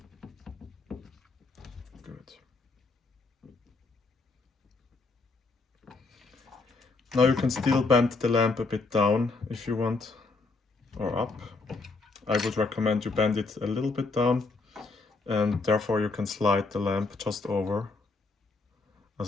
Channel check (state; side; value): quieter; right; 3.7 dB